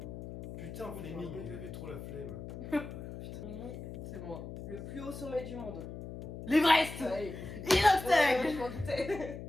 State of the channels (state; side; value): noise; left; hum, 10 dB below the sound